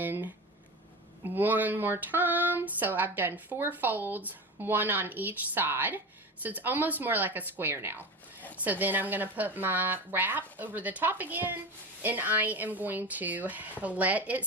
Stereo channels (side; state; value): both; normal; correlation 0.27